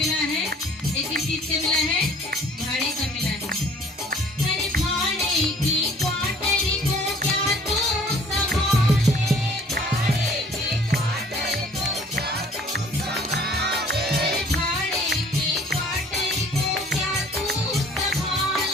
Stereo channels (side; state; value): both; normal; correlation 0.55